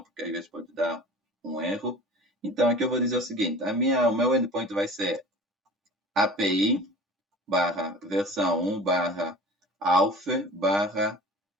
porque às vezes pode dar um erro. Então aqui eu vou dizer o seguinte, o meu endpoint vai ser API versão 1 auth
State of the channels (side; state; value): both; normal; correlation 0.41